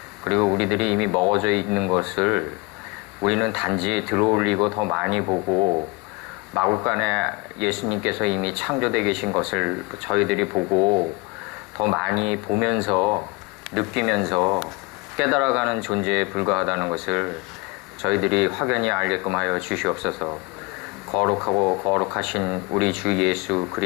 그리고 우리들이 이미 먹어져 있는 것을 우리는 단지 들어올리고 더 많이 보고 마구간에 예수님께서 이미 창조되어 계신 것을 저희들이 보고 더 많이 보면서 느끼면서 깨달아가는 존재에 불과하다는 것을 저희들이 확연히 알게끔 하여 주시옵소서. 거룩하고 거룩하신 우리 주 예수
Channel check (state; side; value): quieter; right; 25.9 dB